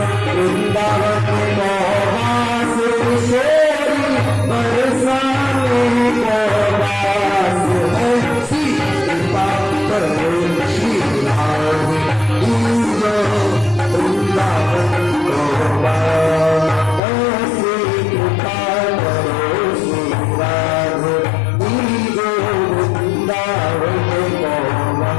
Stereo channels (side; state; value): right; drops out; at 17.0 s